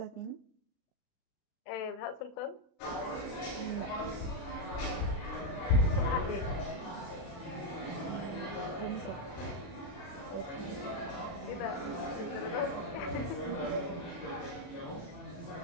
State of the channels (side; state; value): right; late; 36 ms